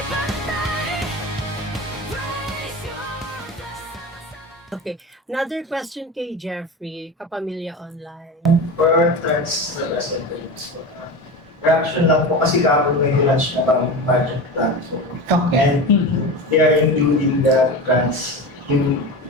Raise your flag. Okay. Another question kay Jeffrey, Kapamilya Online. For our trans representatives, reaction lang po kasi kapag may lunch na parang project plan. So, and they are including the trans yung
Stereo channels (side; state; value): both; normal; correlation 0.26